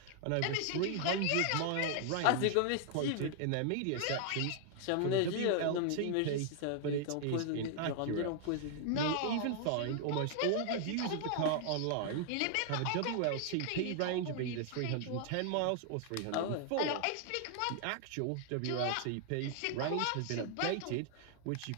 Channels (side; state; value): both; different; correlation 0.00